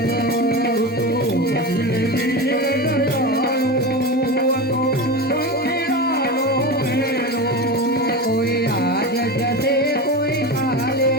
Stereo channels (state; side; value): normal; both; correlation 0.23